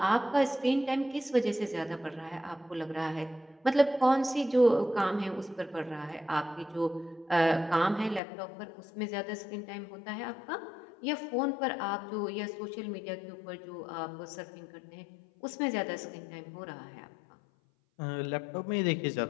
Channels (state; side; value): drops out; right; at 8.2 s